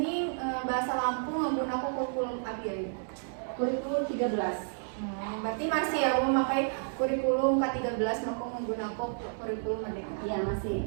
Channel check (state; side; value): silent; left; digital silence